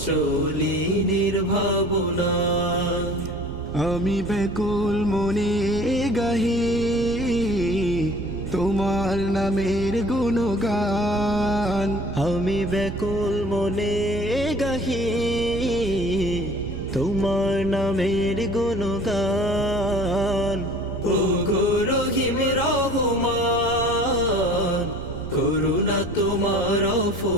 চলি নির্ভাবনায়। আমি ব্যাকুল মনে গাহি তোমার নামের গুণগান। আমি ব্যাকুল মনে গাহি তোমার নামের গুণগান। ও গো রহিম রহমান, করুণা তোমার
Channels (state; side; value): noise; right; rumble, 11 dB below the sound